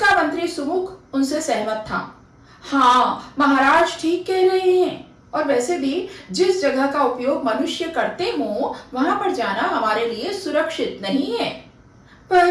मंत्री सुमुख उनसे सहमत था। हाँ, महाराज ठीक कह रहे हैं। और वैसे भी जिस जगह का उपयोग मनुष्य करते हो, वहां पर जाना हमारे लिए सुरक्षित नहीं है।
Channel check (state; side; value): identical; both; correlation 1.00